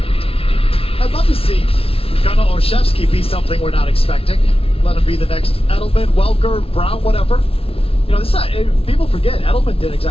I'd love to see Gunnar Olszewski be something we're not expecting. Let him be the next Edelman, Welker, Brown, whatever. You know, this people forget Edelman didn't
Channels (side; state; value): right; late; 0.27 ms